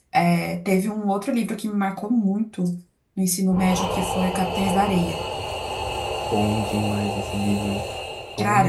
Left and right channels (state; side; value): identical; both; correlation 1.00